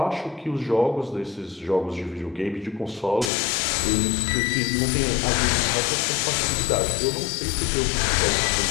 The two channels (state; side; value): drops out; right; at 3.3 s